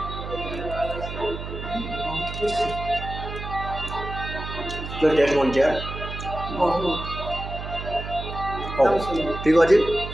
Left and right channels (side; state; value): right; noise; hum, 8 dB below the sound